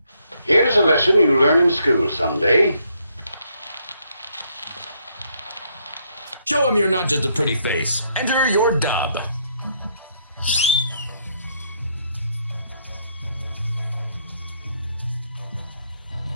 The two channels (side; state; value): both; inverted; correlation -0.72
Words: Here's a lesson you learn in school someday. Show him you're not just a pretty face. Enter your dub.